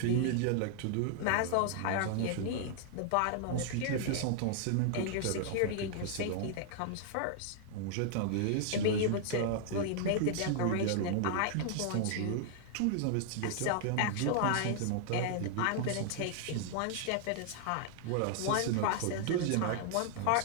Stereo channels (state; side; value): different; both; correlation -0.01